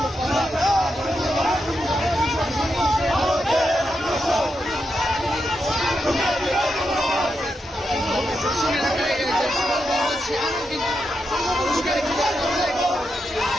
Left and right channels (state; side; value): normal; both; correlation 0.85